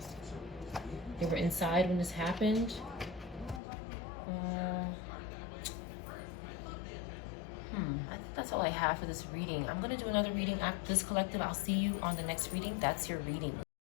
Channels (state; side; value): drops out; right; at 3.6 s